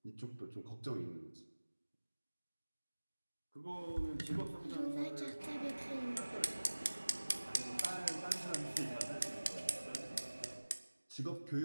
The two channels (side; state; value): both; inverted; correlation -1.00